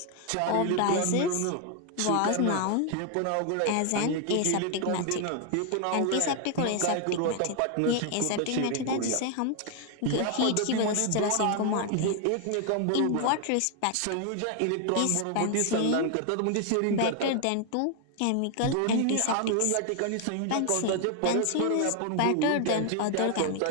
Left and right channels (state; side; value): different; both; correlation 0.00